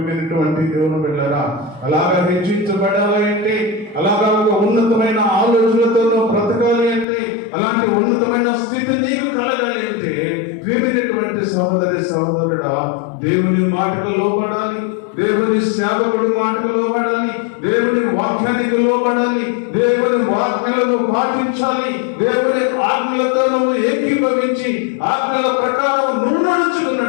దేవుని బిడ్డలారా. అలాగా హెచ్చించబడాలి అంటే, అలాగా ఒక ఉన్నతమైన ఆలోచనలతో బ్రతకాలి అంటే, అలాంటి ఉన్నతమైన స్థితి నీకు కలగాలి అంటే ప్రియమైనటువంటి సహోదరుడా, దేవుని మాటకు లోబడాలి, దేవుని సేవకుడి మాటకు లోబడాలి, దేవుని వాక్యానికి లోబడాలి, దేవుని వాక్యాలను పాటించాలి, దేవుని ఆజ్ఞలతో నువ్వు ఏకీభవించి ఆజ్ఞల ప్రకారం నువ్వు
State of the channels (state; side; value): drops out; right; at 7.1 s